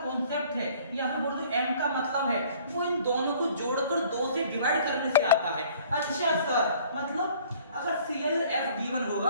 कॉन्सेप्ट है, या फिर बोल दो M का मतलब है, वो इन दोनों को जोड़कर 2 से डिवाइड करने से आता है। अच्छा सर, मतलब अगर CLF गिवन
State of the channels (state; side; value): inverted; both; correlation -0.54